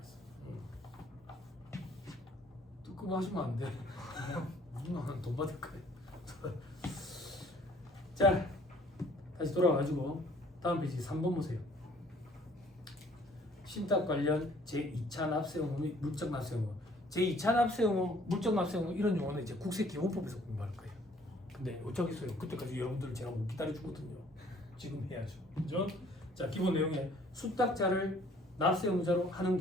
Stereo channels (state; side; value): normal; both; correlation 0.58